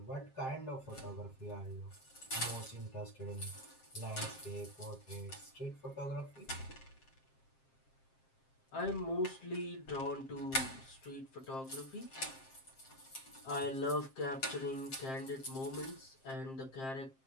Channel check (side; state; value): right; late; 7.5 ms